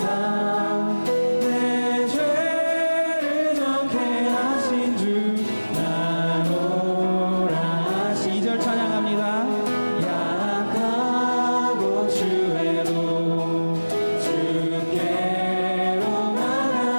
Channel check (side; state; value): both; inverted; correlation -1.00